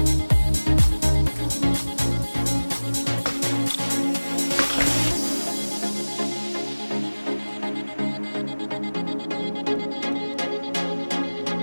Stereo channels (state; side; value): inverted; both; correlation -1.00